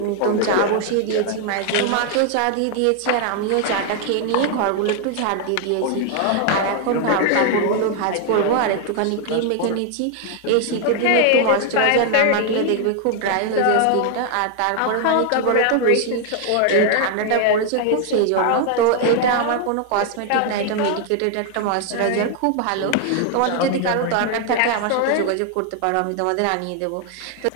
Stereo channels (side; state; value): both; different; correlation 0.00